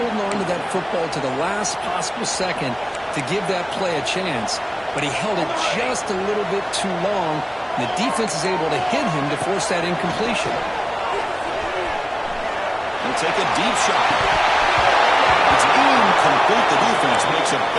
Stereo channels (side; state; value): both; identical; correlation 1.00